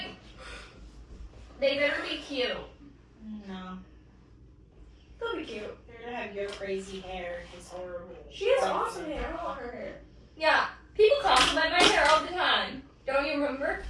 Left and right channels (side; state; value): both; identical; correlation 1.00